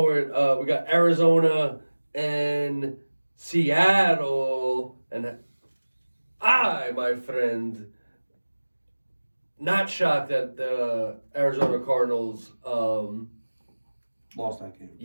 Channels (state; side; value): inverted; both; correlation -1.00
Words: we got Arizona and Seattle, and my friend, not shocked that the Arizona Cardinals. Lost that game.